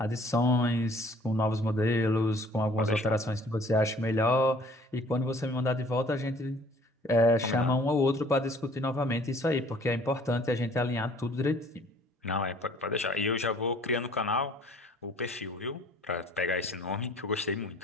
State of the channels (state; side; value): normal; both; correlation 0.54